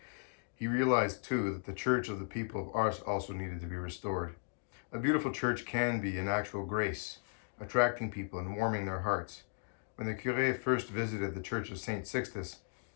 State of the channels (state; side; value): silent; right; digital silence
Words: he realized too that the church of the people of Ars also needed to be restored. A beautiful church can be an actual grace, attracting people and warming their hearts. When the Curé first visited the church of St. Sixtus,